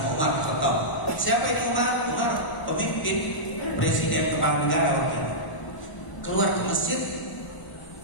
Umar bin Khattab. Siapa ini Umar? Umar pemimpin presiden kepala negara waktu itu. Keluar ke masjid,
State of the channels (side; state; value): right; late; 1.0 ms